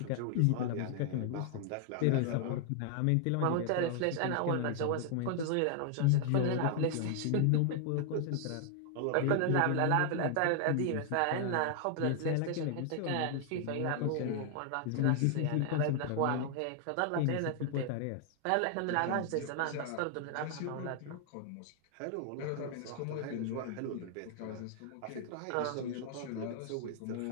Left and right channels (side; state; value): both; different; correlation 0.00